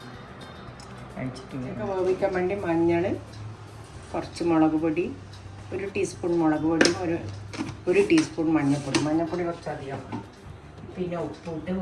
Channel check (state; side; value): identical; both; correlation 1.00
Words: കഴിച്ചിട്ടില്ല. വേവിക്കാൻ വേണ്ടി മഞ്ഞൾ, കുറച്ച് മുളക് പൊടി, 1 ടീസ്പൂൺ മുളക് പൊടിയും ഒരു ടീസ്പൂൺ മഞ്ഞൾപ്പൊടി. മഞ്ഞൾപ്പൊടി കുറച്ചധികം, പിന്നെ ഉപ്പിട്ട്